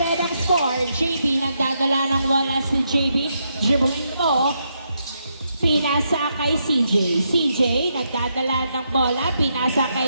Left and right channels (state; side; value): inverted; both; correlation -0.80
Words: ang score. JB nagdadala ng wala si JB. Dribbling mo. Pinasa kay CJ. CJ nagdadala ng bola. Pinasa